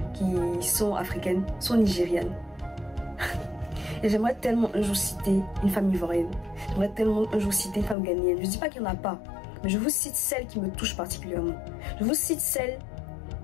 qui sont africaines, sont nigérianes. Et j'aimerais tellement un jour citer une femme ivoirienne. J'aimerais tellement un jour citer une femme ghanéenne. Je ne dis pas qu'il n'y en a pas, mais je vous cite celles qui me touchent particulièrement. Je vous cite celles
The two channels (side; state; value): right; drops out; at 8.0 s